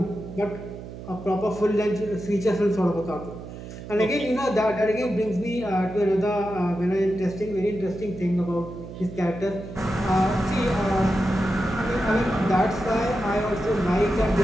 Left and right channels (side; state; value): right; noise; hum, 12 dB below the sound